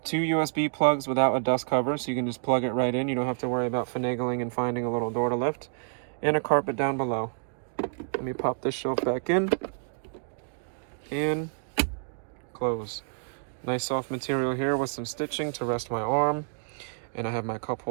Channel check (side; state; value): left; silent; digital silence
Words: 2 USB plugs without a dust cover, so you can just plug it right in. You don't have to worry about finagling and finding a little door to lift. And a carpet down below. Let me pop this shelf back in. And close. Nice soft material here with some stitching to rest my arm. And I have my cup